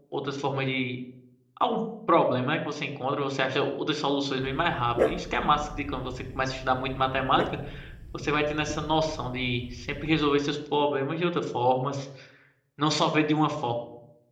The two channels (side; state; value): both; identical; correlation 1.00